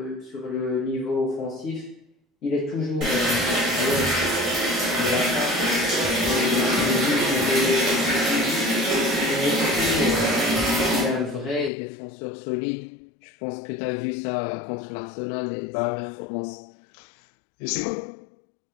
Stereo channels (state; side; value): drops out; right; at 11.7 s